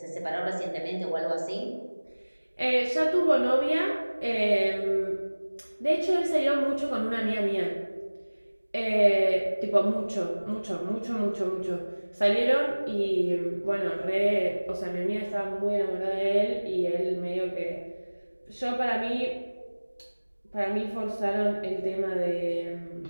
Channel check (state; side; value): inverted; both; correlation -1.00